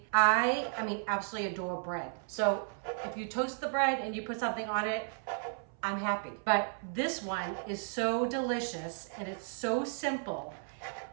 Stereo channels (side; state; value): left; silent; 55 dB below the other